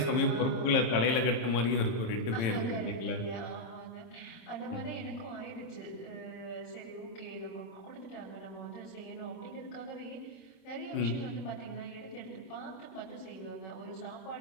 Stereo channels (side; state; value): right; late; 26 ms